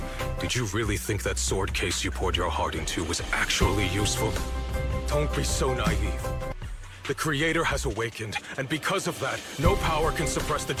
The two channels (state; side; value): identical; both; correlation 1.00